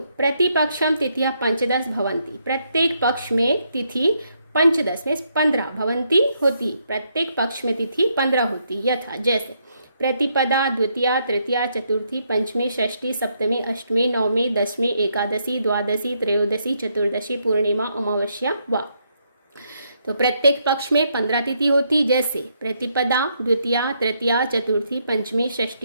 प्रतिपक्षम तिथियां 15 भवन्ति। प्रत्येक पक्ष में तिथि 15 में 15 भवन्ति होती। प्रत्येक पक्ष में तिथि 15 होती। यथा जैसे प्रतिपदा द्वितीया तृतीया चतुर्थी पंचमी षष्ठी सप्तमी अष्टमी नवमी दशमी एकादशी द्वादशी त्रयोदशी चतुर्दशी पूर्णिमा अमावस्या वा। तो प्रत्येक पक्ष में 15 तिथि होती। जैसे प्रतिपदा द्वितीया तृतीया चतुर्थी पंचमी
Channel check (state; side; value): inverted; both; correlation -0.76